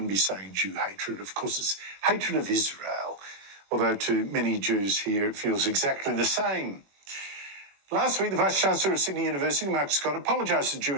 be saying Jew hatred, of course it's hatred of Israel, although to many Jews here it feels exactly the same. Last week, the Vice-Chancellor of Sydney University, Mark Scott, apologised to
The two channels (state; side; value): late; left; 21 ms